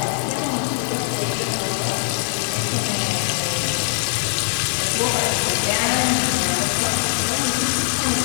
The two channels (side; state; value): right; silent; digital silence